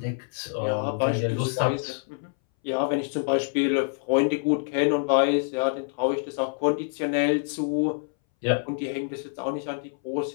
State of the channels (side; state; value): right; silent; 61 dB below the other